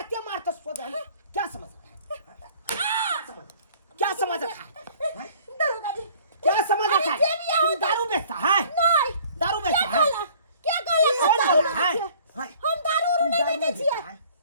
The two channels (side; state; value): both; inverted; correlation -0.53